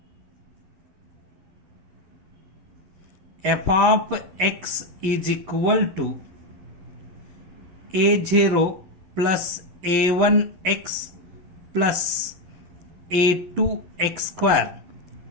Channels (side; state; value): left; late; 11 ms